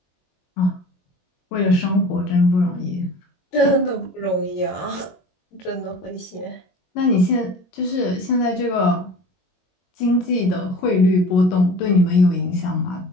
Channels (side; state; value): right; late; 22 ms